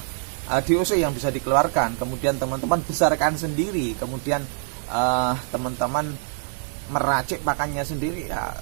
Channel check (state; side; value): silent; left; 62 dB below the other